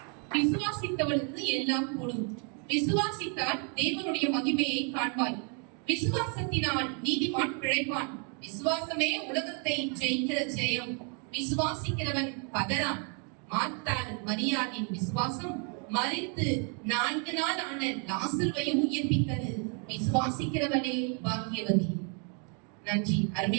விசுவாசித்தவனுக்கு எல்லாம் கூடும். விசுவாசித்தால் தேவனுடைய மகிமையை காண்பாய். விசுவாசத்தினால் நீதிமான் பிழைப்பான். விசுவாசமே உலகத்தை ஜெயிக்கிற ஜெயம். விசுவாசிக்கிறவன் பதறான். மார்த்தாள் மரியாளின் விசுவாசம் மரித்து 4 நாள் ஆன லாசருவையும் உயிர்ப்பித்தது. விசுவாசிக்கிறவனே பாக்கியவதி. நன்றி.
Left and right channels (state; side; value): quieter; left; 38.7 dB